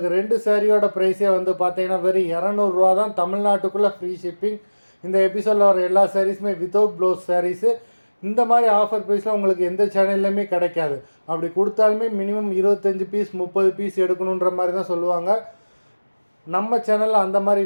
2 சேரீயோட ப்ரைஸே வந்து பார்த்திங்கன்னா வெறும் 200 தான், தமிழ்நாட்டுக்குள்ளே ஃப்ரீ ஷிப்பிங். இந்த எபிசோடில் வர எல்லா சாரீஸுமே வித்தவுட் ப்ளவுஸ் சாரீஸு. இந்த மாதிரி ஆஃபர் ப்ரைஸில் உங்களுக்கு எந்த சேனல்லையுமே கிடைக்காது. அப்படி கொடுத்தாலுமே மினிமம் 25 பீஸ் 30 பீஸ் எடுக்கணுன்ற மாதிரி தான் சொல்லுவாங்க. நம்ம சேனலில் அந்த மாதிரி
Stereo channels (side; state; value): both; inverted; correlation -1.00